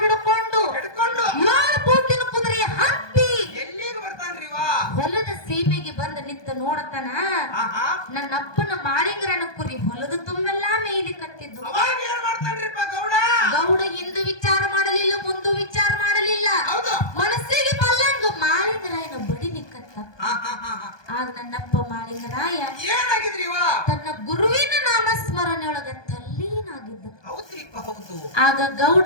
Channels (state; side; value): late; right; 1.2 ms